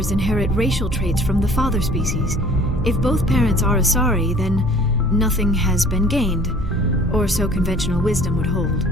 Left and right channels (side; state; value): both; normal; correlation 0.51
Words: inherit racial traits from the father species. If both parents are Asari, then nothing has been gained, or so conventional wisdom would hold.